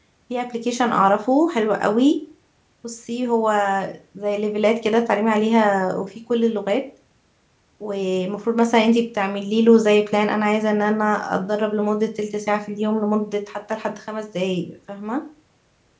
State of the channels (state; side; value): identical; both; correlation 1.00